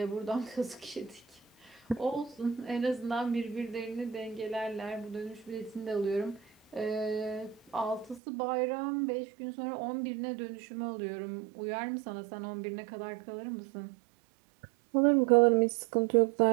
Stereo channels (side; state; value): left; drops out; at 8.2 s